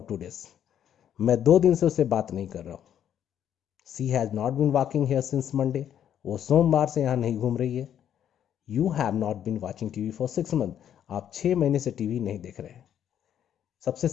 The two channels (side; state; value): right; quieter; 9.8 dB